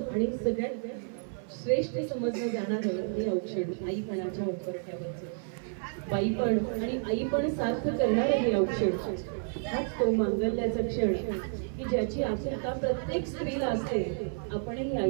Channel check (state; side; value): silent; left; 57 dB below the other